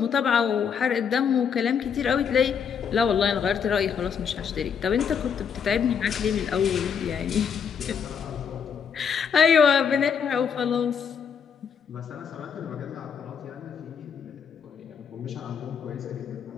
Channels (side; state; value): right; quieter; 7.0 dB